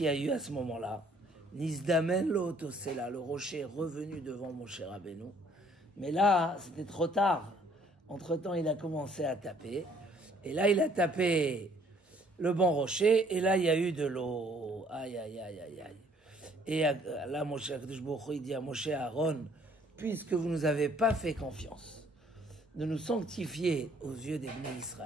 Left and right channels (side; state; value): both; normal; correlation 0.61